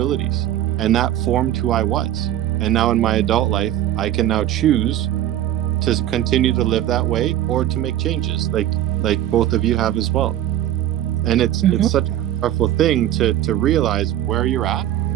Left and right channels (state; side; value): quieter; left; 12.2 dB